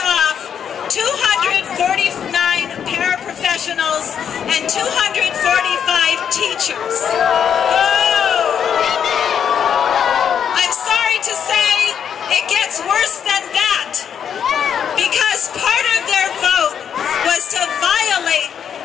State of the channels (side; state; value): right; quieter; 8.1 dB